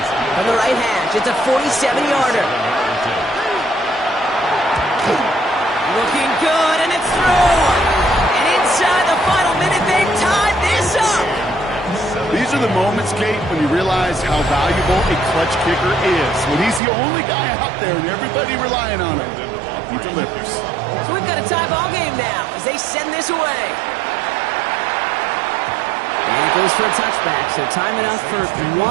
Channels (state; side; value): drops out; left; at 16.8 s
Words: From the right hash, it's a 47-yarder. Looking good, and it's through. And inside the final minute, they've tied this up. These are the moments, Kate, when you realize how valuable a clutch kicker is. When he's the only guy out there and everybody relying on him, he delivers. So we've got a tie ball game now as they send this away. And it goes for a touchback, so time enough for